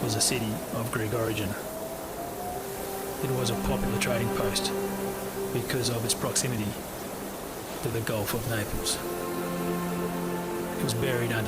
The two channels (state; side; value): identical; both; correlation 1.00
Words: was a city of Greek origin. It was a popular trading post because of its proximity to the Gulf of Naples. It was buried